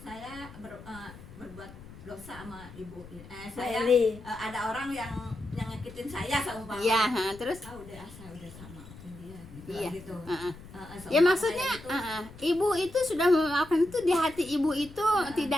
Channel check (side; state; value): left; noise; rumble, 17 dB below the sound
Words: berbuat dosa sama ibu saya ada orang yang nyakitin saya seumpamanya Iya, terus saya udah sama maafin dia gitu Iya. gitu. ya maksudnya ibu itu sudah memaafkan itu di hati ibu itu